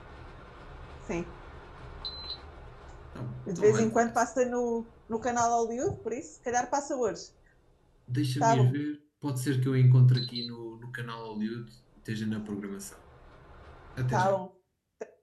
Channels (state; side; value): identical; both; correlation 1.00